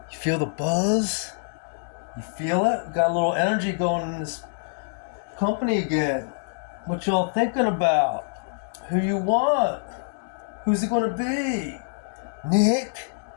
You feel the buzz? You feel it? Got a little energy going in this company again. What y'all thinking about? Who you want? Who's it gonna be? Nick?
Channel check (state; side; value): silent; right; digital silence